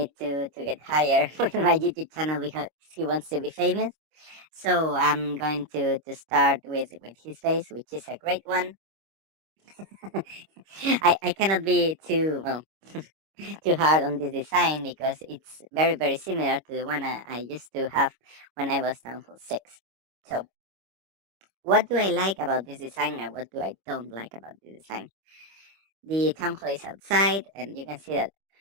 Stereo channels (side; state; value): left; late; 25 ms